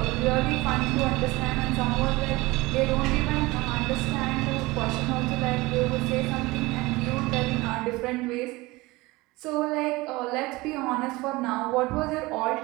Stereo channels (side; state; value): left; quieter; 21.5 dB